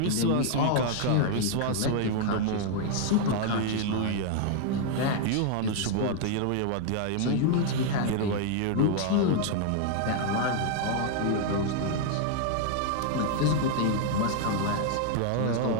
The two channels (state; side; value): different; both; correlation 0.00